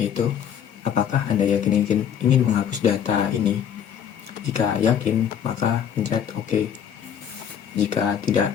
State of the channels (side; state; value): right; quieter; 8.6 dB